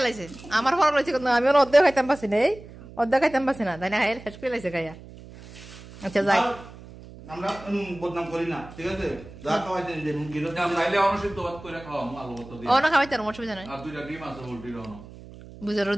লাইছে আমার ফল রয়েছে কিন্তু আমি অর্ধেক খাইতাম পাচ্ছি না এই অর্ধেক খাইতাম পাচ্ছি না তাই না খাই শেষ করে লাইছে খাইয়া আচ্ছা যাই আমরা বদনাম করি না ঠিক আছে যা খাওয়াইতে দিন গিলো নাইলে অনসিদ্ধ ভাত করে খাওয়া আলু ভর্তা দিয়ে অন্য খাওয়াইতাম অসুবিধা নাই আর দুইটা ডিম আছে পোল্ট্রির অন বুঝে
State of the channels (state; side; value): noise; right; hum, 17 dB below the sound